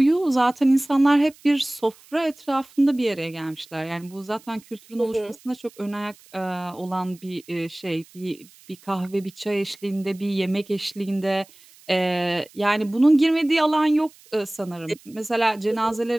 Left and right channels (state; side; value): noise; right; hiss, 26 dB below the sound